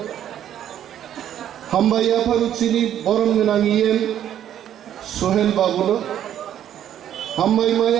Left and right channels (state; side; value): quieter; left; 10.7 dB